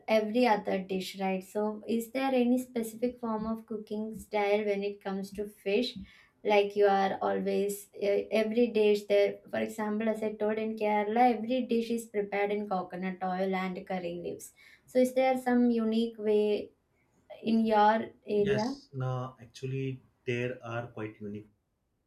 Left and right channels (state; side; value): identical; both; correlation 1.00